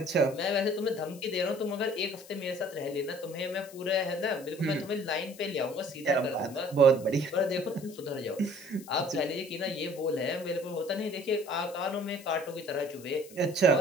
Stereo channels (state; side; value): noise; left; hiss, 20 dB below the sound